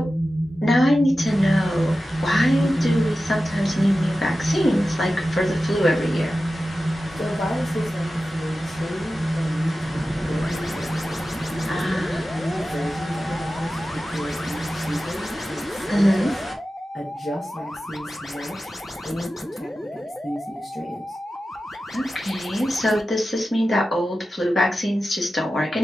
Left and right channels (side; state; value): both; normal; correlation 0.94